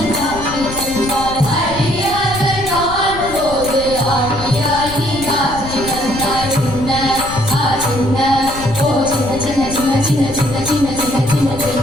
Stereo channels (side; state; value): left; noise; rumble, 11 dB below the sound